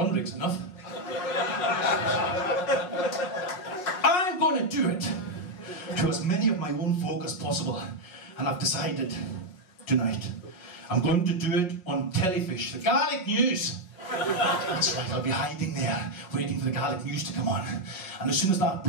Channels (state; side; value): late; right; 5.5 ms